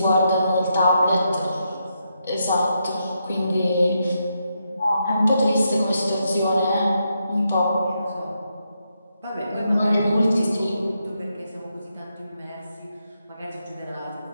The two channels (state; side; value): inverted; both; correlation -0.82